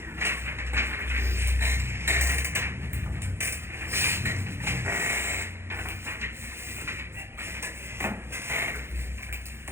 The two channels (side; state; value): left; late; 0.12 ms